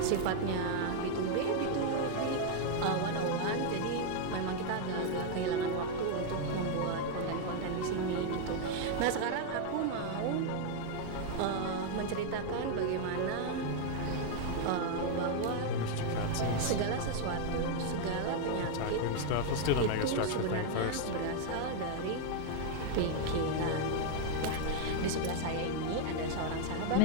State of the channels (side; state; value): both; different; correlation 0.00